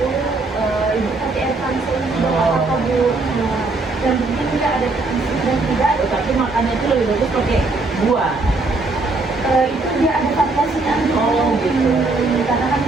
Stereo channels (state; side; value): quieter; left; 3.4 dB